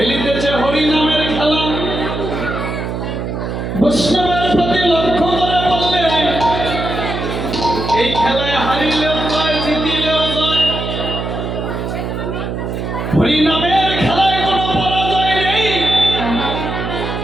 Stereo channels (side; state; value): right; noise; hum, 4 dB below the sound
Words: হরি নামের খেলা। বৈষ্ণবের প্রতি লক্ষ্য করে বললে এই খেলায় হারিলেও জয়, জিতিলেও জয়। হরি নামের খেলায় কোনো পরাজয় নেই।